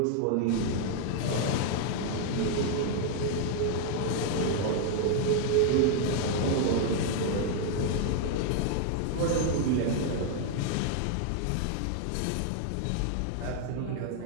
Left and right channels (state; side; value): different; both; correlation 0.00